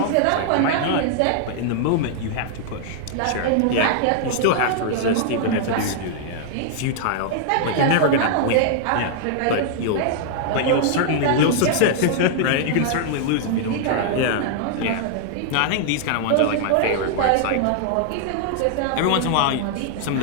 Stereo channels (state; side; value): different; both; correlation -0.01